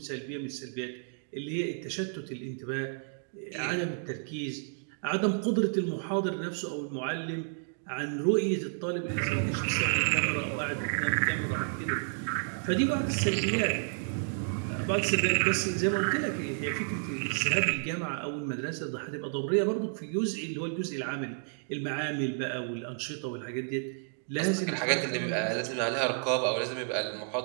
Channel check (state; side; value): silent; left; digital silence